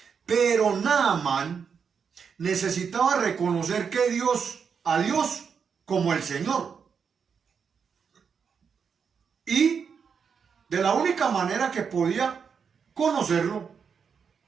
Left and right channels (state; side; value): quieter; left; 6.4 dB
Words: pero Naamán necesitaba reconocer que a Dios como el Señor. Y de la única manera que podía conocerlo